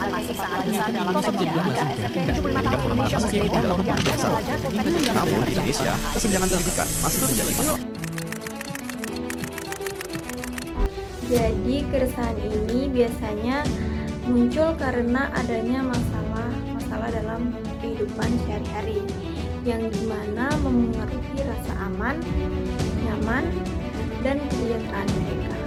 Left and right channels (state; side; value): identical; both; correlation 1.00